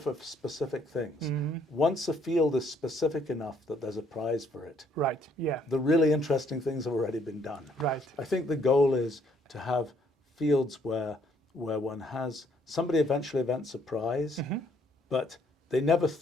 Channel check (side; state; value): both; normal; correlation 0.66